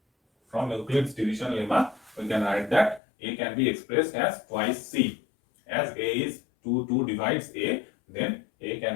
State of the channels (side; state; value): right; drops out; at 3.0 s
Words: From Euclid's division lemma, we can write that a can be expressed as twice c. As a is 2 divides a, then a